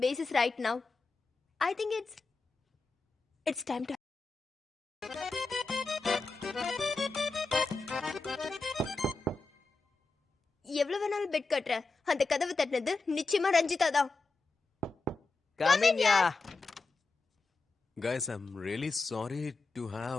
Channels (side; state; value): right; quieter; 3.8 dB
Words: basis right now? I think it's time to. எவ்வளவு வேணாலும் பெட் கட்டுற, அந்த கதவு தட்டினது நிச்சயமா ரஞ்சிதா தான். Come in, yeah. Guys, I'm really sorry to